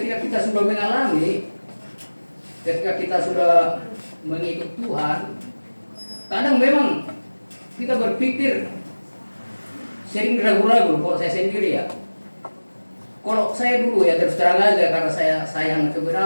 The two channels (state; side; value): inverted; both; correlation -1.00